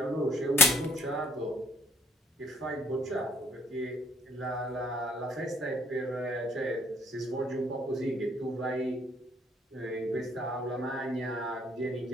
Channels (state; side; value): normal; both; correlation 0.64